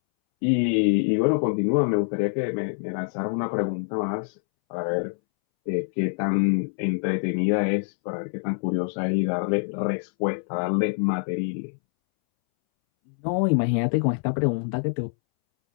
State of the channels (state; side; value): silent; right; 62 dB below the other